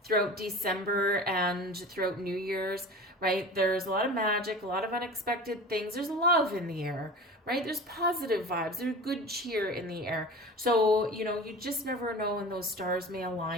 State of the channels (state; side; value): normal; both; correlation 0.35